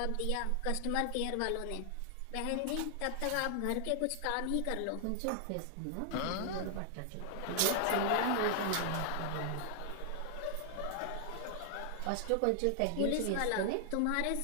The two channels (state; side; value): different; both; correlation 0.00